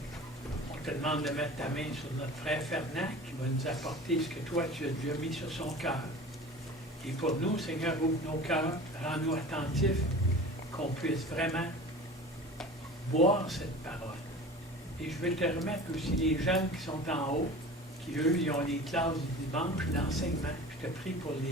On te demande de mettre ta main sur notre frère Fernand qui va nous apporter ce que toi tu as déjà mis sur son cœur. Et pour nous, Seigneur, ouvre nos cœurs, rends-nous attentifs, qu'on puisse vraiment boire cette parole. Et je veux te remettre aussi les jeunes qui sont en haut, qui eux, ils ont les classes du dimanche d'enseignement. Je te prie pour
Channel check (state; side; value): normal; both; correlation 0.38